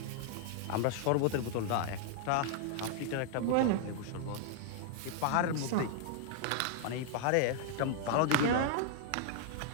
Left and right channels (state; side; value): different; both; correlation -0.01